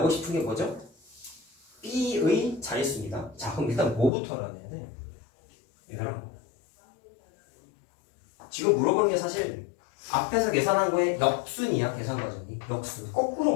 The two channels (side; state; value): right; drops out; at 4.1 s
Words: 싶은 게 뭐죠? B의 자릿수입니다. 자, 그럼 일단 뭐부터 알아내야 돼? 얘들아, 지금 물어보는 게 사실 앞에서 계산한 거에 역순이야. 계산 과정이 역순. 거꾸로